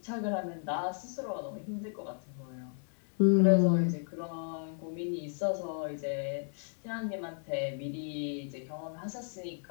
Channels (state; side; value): silent; right; 55 dB below the other